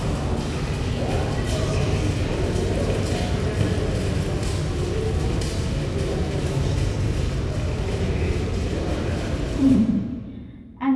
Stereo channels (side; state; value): both; identical; correlation 1.00